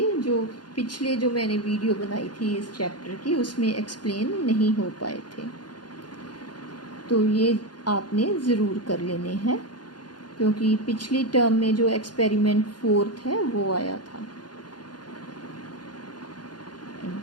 जो पिछले जो मैंने वीडियो बनाई थी इस चैप्टर की, उसमें एक्सप्लेन नहीं हो पाए थे, तो ये आपने ज़रूर कर लेने हैं, क्योंकि पिछली टर्म में जो एक्सपेरिमेंट 4th है वो आया था।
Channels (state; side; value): late; right; 0.70 ms